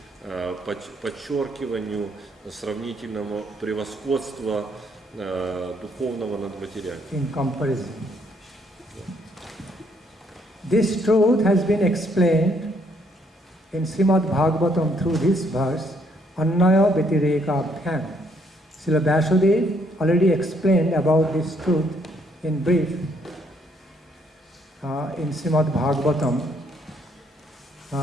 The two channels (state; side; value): normal; both; correlation 0.69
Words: подчеркиванию сравнительного превосходства духовного над материальным. In comparison. This truth has been explained in Srimad Bhagavatam through this verse, Annaya Vyatireka Bhyam. Srila Vasudev already explained about this truth in brief in Srimad Bhagavatam